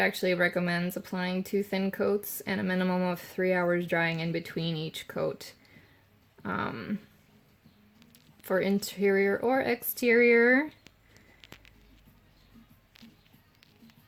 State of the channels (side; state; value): both; identical; correlation 1.00